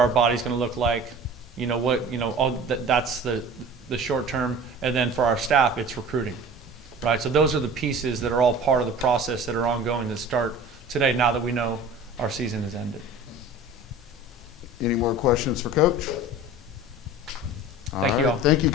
bodies going to look like? That's the short term. And then for our staff, it's recruiting. Right, so those are the pieces that are all part of the process that are ongoing that start today, now that we know our season has ended. Any more questions for Coach? Thank you all. Thank you,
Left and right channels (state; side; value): normal; both; correlation 0.40